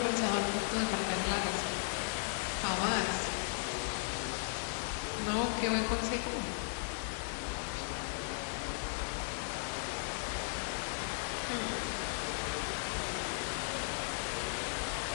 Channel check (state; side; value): silent; right; digital silence